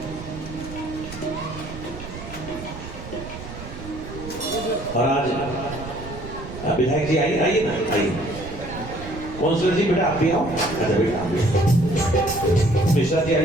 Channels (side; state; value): right; noise; rumble, 12 dB below the sound